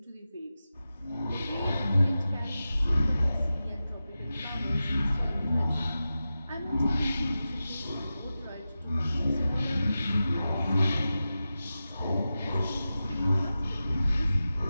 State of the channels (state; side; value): inverted; both; correlation -0.93